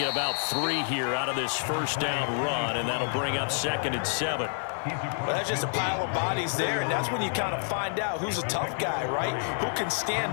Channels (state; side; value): silent; right; digital silence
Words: about 3 here out of this 1st down run, and that'll bring up 2nd and 7. Well, that's just a pile of bodies there, and that's when you kind of find out who's a tough guy, right? Who can